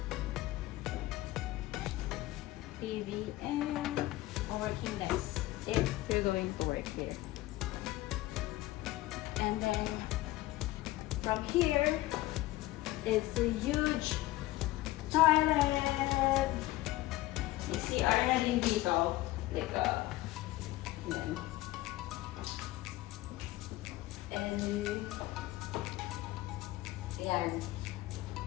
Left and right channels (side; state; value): right; quieter; 17.4 dB